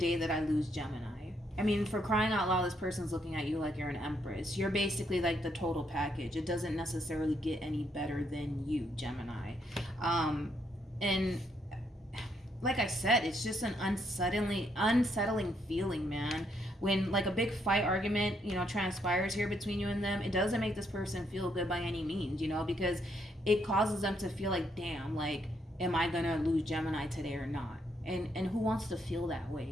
that I lose Gemini? I mean, for crying out loud, this person's looking at you like you're an Empress. You're basically like the total package. It doesn't necessarily get any better than you, Gemini. And like I said, it's just an unsettling feeling, man. When like a big fight argument, you know, transpires here between you and them, it doesn't make this person feel good by any means, you know, because it causes them to feel like, damn, like, am I gonna lose Gemini today or not? And who wants to feel that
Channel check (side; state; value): both; normal; correlation 0.74